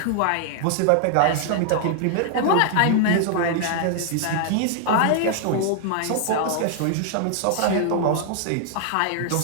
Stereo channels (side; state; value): both; different; correlation 0.00